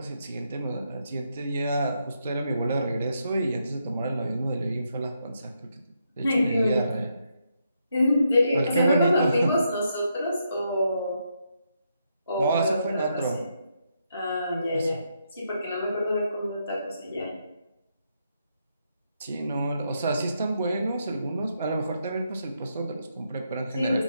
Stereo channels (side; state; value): both; inverted; correlation -0.79